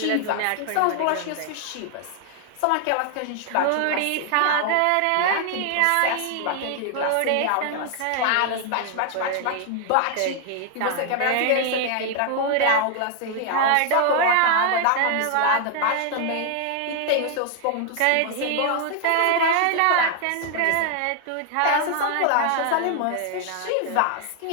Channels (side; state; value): both; different; correlation 0.00